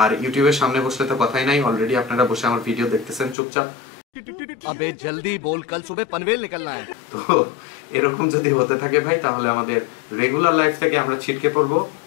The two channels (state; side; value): drops out; right; at 3.4 s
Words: আর ইউটিউবের সামনে বসলে তো কথাই নাই, অলরেডি আপনারা বসে আমার ভিডিও দেখতেছেন চুপচাপ। अबे जल्दी बोल, कल सुबह पनवेल निकलना है। তো এরকম যদি হতে থাকে ভাই, তাহলে আমাদের রেগুলার লাইফ থেকে আমরা ছিটকে পড়বো।